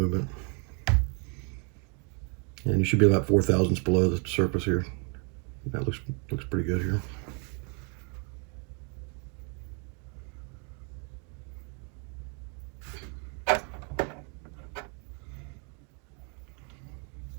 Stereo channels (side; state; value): left; quieter; 37.1 dB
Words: And you should be about 4 thousandths below the surface here. That looks pretty good here.